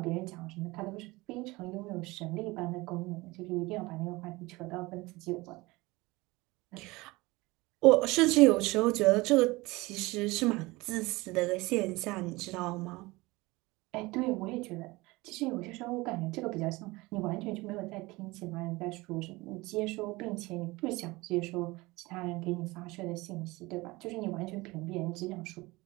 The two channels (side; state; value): left; quieter; 22.0 dB